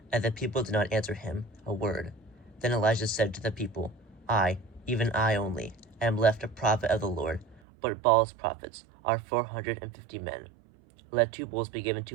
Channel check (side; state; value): left; drops out; at 7.6 s